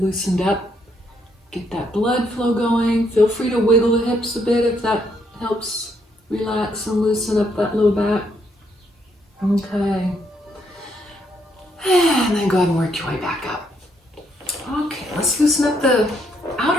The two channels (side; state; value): both; normal; correlation 0.73